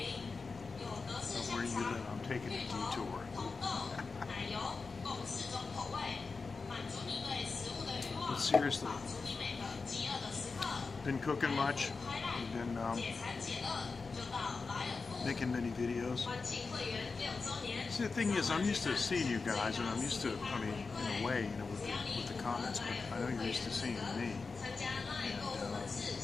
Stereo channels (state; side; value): quieter; right; 4.4 dB